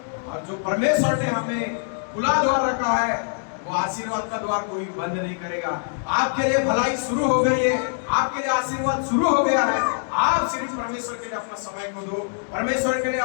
और जो परमेश्वर ने हमें खुला द्वार रखा है, वो आशीर्वाद का द्वार कोई बंद नहीं करेगा। आपके लिए भलाई शुरू हो गई है, आपके लिए आशीर्वाद शुरू हो गया है, आप सिर्फ परमेश्वर के लिए अपना समय को दो, परमेश्वर के लिए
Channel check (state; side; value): silent; right; 63 dB below the other